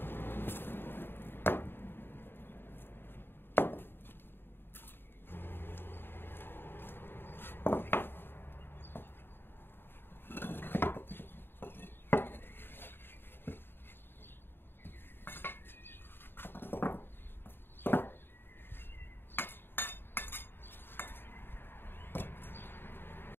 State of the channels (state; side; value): late; right; 0.10 ms